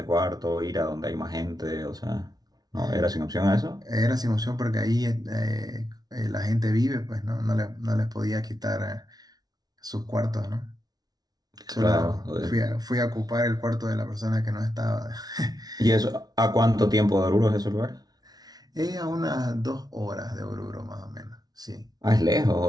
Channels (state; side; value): late; left; 0.19 ms